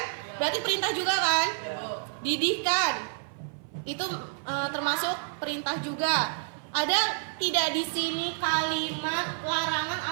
Berarti perintah juga kan? Didihkan. Itu termasuk perintah juga. Ada tidak di sini kalimat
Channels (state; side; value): silent; left; 55 dB below the other